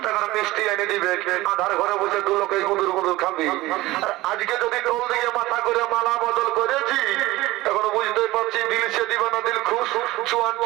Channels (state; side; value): quieter; left; 18.5 dB